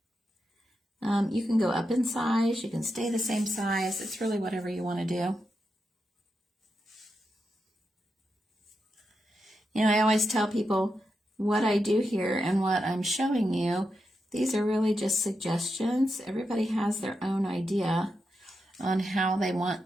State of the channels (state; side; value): normal; both; correlation 0.86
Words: You can go up in size, you can stay the same size. It's really whatever you want to do. You know, I always tell people what I do here and what I'm showing you, these are really just suggestions. Everybody has their own idea on how they